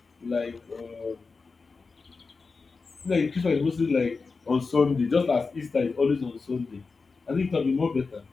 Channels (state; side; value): quieter; right; 4.4 dB